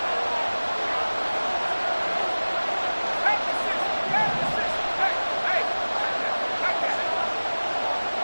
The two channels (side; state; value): both; inverted; correlation -1.00